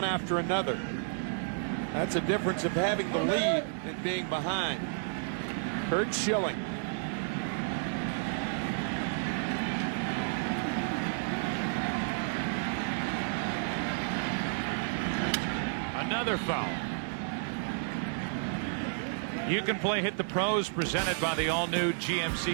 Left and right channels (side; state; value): left; silent; digital silence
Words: after another. That's a difference of having the lead and being behind. Curt Schilling. Another foul. You can play Hit the Pros, presented by the all-new